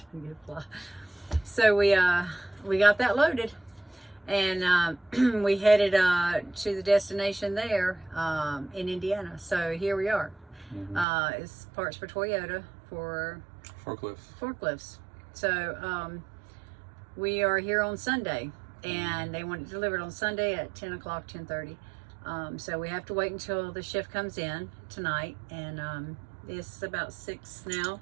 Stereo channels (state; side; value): drops out; left; at 11.1 s